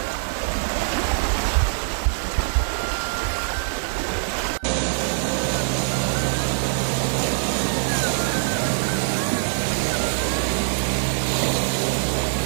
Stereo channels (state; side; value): silent; left; digital silence